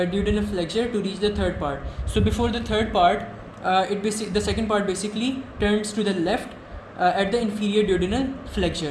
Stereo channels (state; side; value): identical; both; correlation 1.00